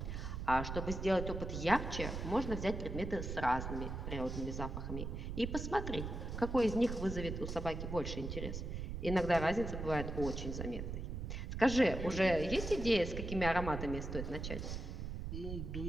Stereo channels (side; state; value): right; noise; rumble, 5 dB below the sound